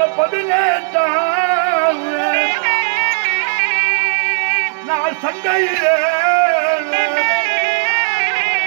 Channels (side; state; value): left; silent; 66 dB below the other